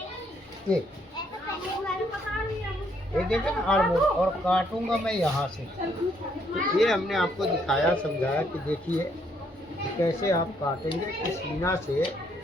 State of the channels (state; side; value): normal; both; correlation 0.70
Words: ये देखिए ना आर्मोर, और काटूंगा मैं यहाँ से। तो ये हमने आपको दिखाया समझाया कि देखिए कैसे आप काटेंगे कि सीना से